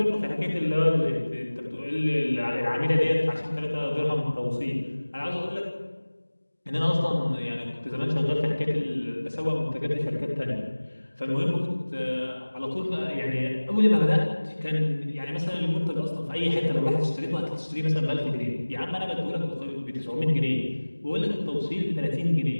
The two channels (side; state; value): both; inverted; correlation -1.00